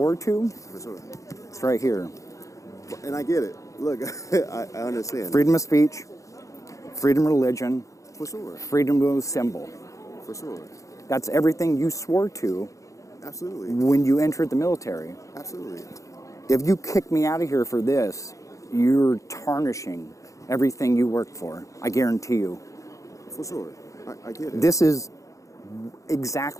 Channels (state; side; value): late; right; 0.15 ms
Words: to, For sure. it's right here. And I get it. Look, I understand. Freedom of speech, freedom of religion, For sure. freedom of symbol. For sure. That's everything you swore to Absolutely. when you entered the military. Absolutely. If you kick me out of here for this, you're tarnishing everything you worked for. I guarantee you. For sure. I get it. This is